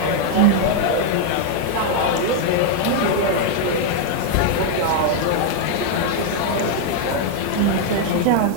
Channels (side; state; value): both; different; correlation 0.00